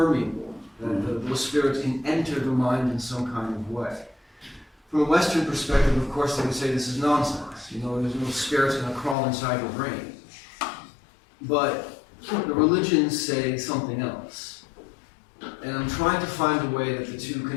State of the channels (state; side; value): drops out; right; at 9.2 s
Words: that those spirits can enter the mind in some kind of way. From a Western perspective, of course, they would say this is nonsense. There's no spirits going to crawl inside your brain. But the religions say something else. And I'm trying to find a way that the two